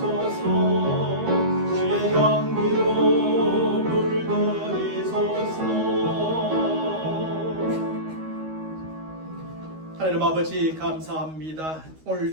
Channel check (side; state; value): left; late; 13 ms